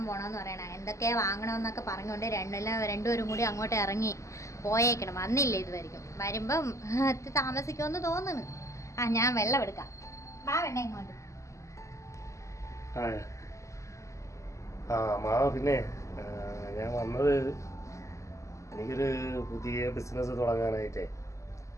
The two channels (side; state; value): right; late; 0.15 ms